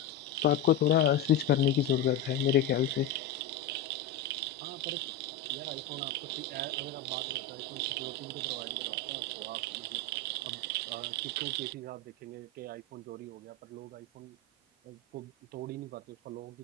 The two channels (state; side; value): quieter; right; 4.4 dB